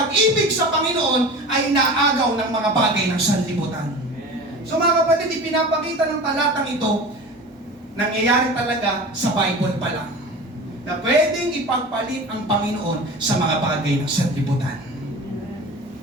sa Panginoon ay naagaw ng mga bagay ng sanlibutan. So mga kapatid, ipinapakita ng talatang ito, nangyayari talaga sa Bible pa lang. Na pwedeng ipagpalit ang Panginoon sa mga bagay ng sanlibutan.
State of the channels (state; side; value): normal; both; correlation 0.35